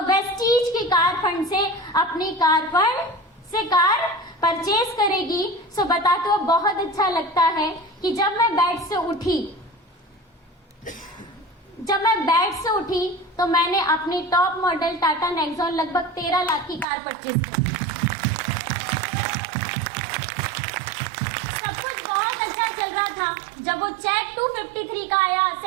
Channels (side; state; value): left; drops out; at 16.9 s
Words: वेस्टीज की कार फंड से अपनी कार फंड से कार परचेज करेगी। बता तो बहुत अच्छा लगता है कि जब मैं बेड से उठी, जब मैं बेड से उठी तो मैंने अपनी टॉप मॉडल टाटा नेक्सॉन लगभग 13 लाख की कार परचेज की। सब कुछ बहुत अच्छा चल रहा था। जब वो चेक 253 का आया,